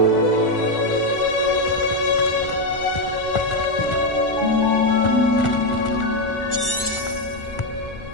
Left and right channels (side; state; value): right; late; 1.4 ms